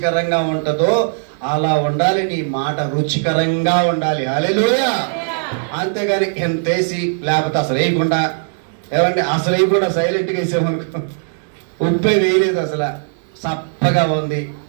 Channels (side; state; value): left; silent; digital silence